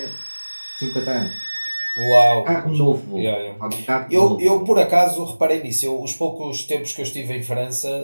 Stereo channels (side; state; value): both; inverted; correlation -1.00